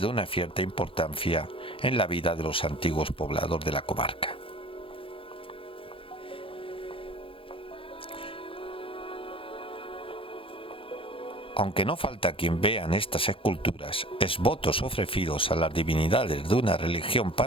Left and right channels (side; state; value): right; late; 0.26 ms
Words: de una cierta importancia en la vida de los antiguos pobladores de la comarca. Aunque no falta quien vea en estas esculturas esvotos ofrecidos a las divinidades de una religión